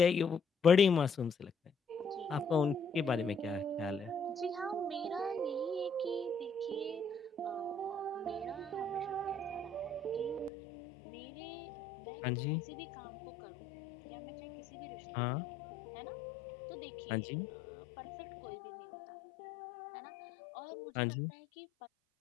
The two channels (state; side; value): drops out; right; at 10.5 s